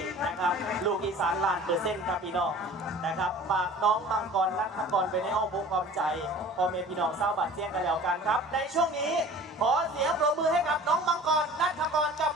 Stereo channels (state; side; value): normal; both; correlation 0.44